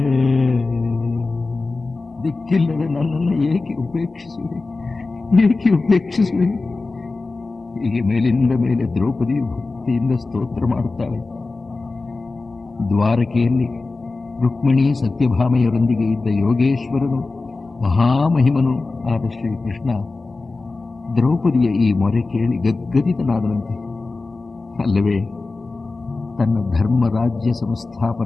ದಿಕ್ಕಿಲ್ಲದೆ ನನ್ನನ್ನು ಏಕೆ ಉಪೇಕ್ಷಿಸುವೆ, ಏಕೆ ಉಪೇಕ್ಷಿಸುವೆ? ಹೀಗೆ ಮೇಲಿಂದ ಮೇಲೆ ದ್ರೌಪದಿಯು ಭಕ್ತಿಯಿಂದ ಸ್ತೋತ್ರ ಮಾಡುತ್ತಾಳೆ. ದ್ವಾರಕೆಯಲ್ಲಿ ರುಕ್ಮಿಣಿ ಸತ್ಯಭಾಮೆಯರೊಂದಿಗೆ ಇದ್ದ ಯೋಗೇಶ್ವರನು, ಮಹಾಮಹಿಮನು ಆದ ಶ್ರೀಕೃಷ್ಣ ದ್ರೌಪದಿಯ ಈ ಮೊರೆ ಕೇಳಿ ಗದ್ಗದಿತನಾದನಂತೆ. ಅಲ್ಲವೇ ತನ್ನ ಧರ್ಮರಾಜ್ಯ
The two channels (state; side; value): quieter; right; 3.6 dB